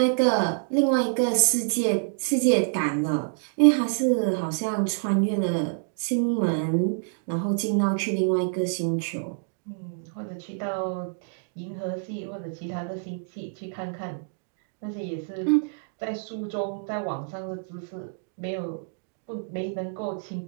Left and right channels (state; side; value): silent; left; digital silence